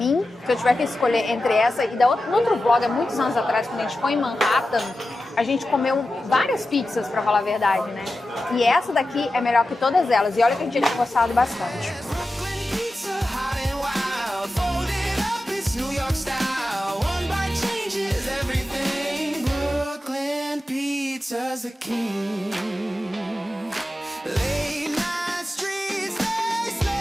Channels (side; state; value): both; normal; correlation 0.92